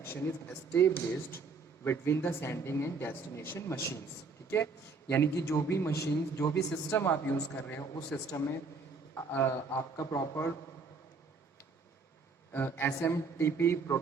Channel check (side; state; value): left; quieter; 4.5 dB